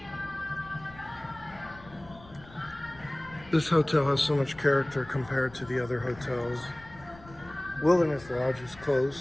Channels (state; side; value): noise; left; rumble, 21 dB below the sound